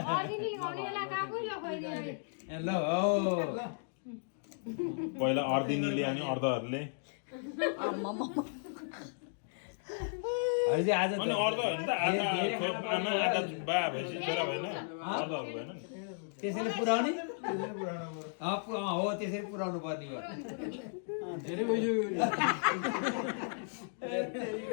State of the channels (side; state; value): right; silent; digital silence